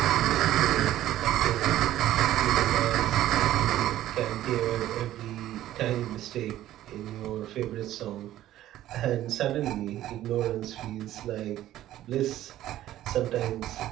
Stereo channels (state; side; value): quieter; left; 13.6 dB